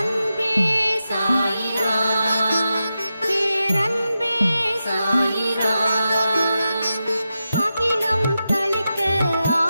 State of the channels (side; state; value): both; inverted; correlation -0.90